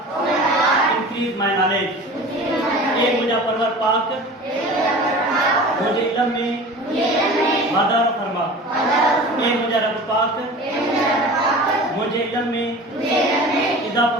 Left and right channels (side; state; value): both; normal; correlation 0.38